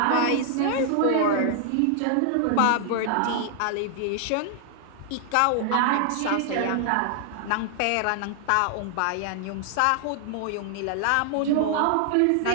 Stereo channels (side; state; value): both; different; correlation 0.00